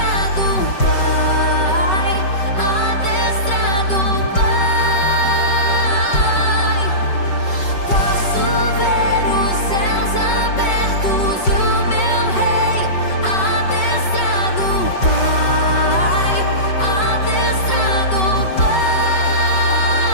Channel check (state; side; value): late; right; 5.3 ms